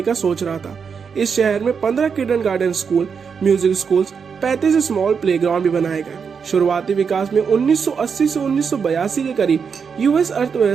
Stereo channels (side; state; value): left; quieter; 6.2 dB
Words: का सोच रहा था। इस शहर में 15 kindergarten school, music schools, 35 small playground भी बनाए गए। शुरुआती विकास में 1980 से 1982 के करीब यूएस